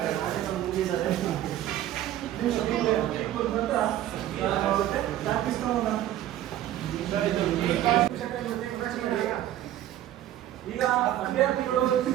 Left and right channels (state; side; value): quieter; left; 12.8 dB